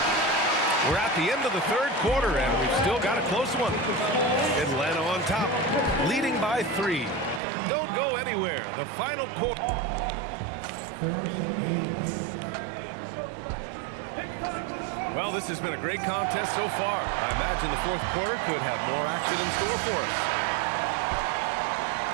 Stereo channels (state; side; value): drops out; left; at 7.4 s